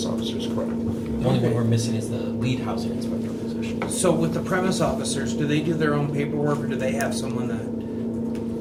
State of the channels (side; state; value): both; identical; correlation 1.00